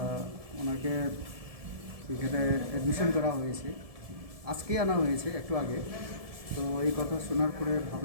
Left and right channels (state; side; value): late; left; 1.7 ms